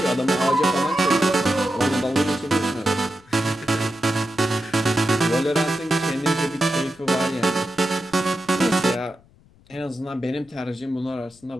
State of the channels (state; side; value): noise; left; rumble, 29 dB below the sound